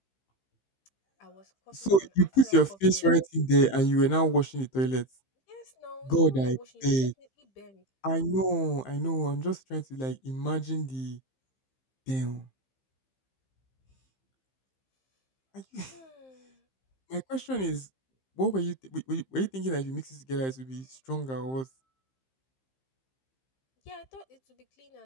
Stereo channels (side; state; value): right; late; 15 ms